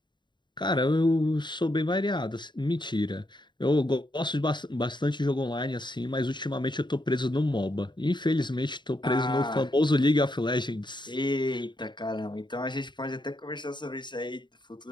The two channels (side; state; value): right; late; 0.22 ms